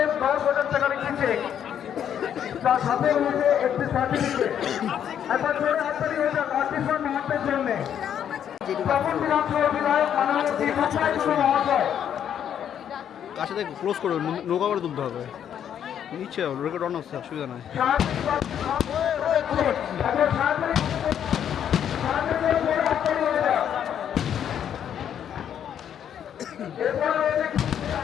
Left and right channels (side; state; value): right; quieter; 9.2 dB